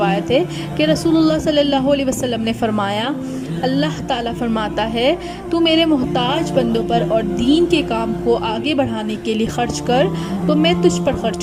ہے کہ رسول اللہ صلی اللہ علیہ وسلم نے فرمایا، اللہ تعالیٰ فرماتا ہے، تو میرے محتاج بندوں پر اور دین کے کام کو آگے بڑھانے کے لیے خرچ کر تو میں تجھ پر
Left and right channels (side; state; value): both; identical; correlation 1.00